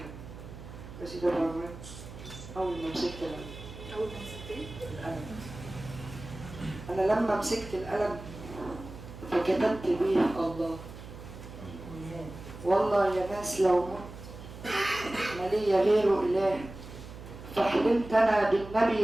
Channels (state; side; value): noise; right; hum, 14 dB below the sound